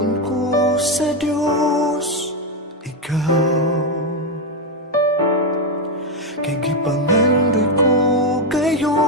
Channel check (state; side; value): normal; both; correlation 0.06